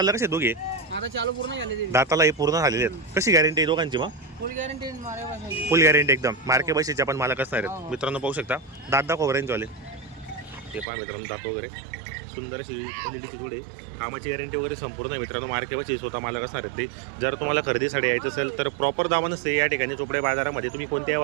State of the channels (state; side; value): drops out; left; at 10.9 s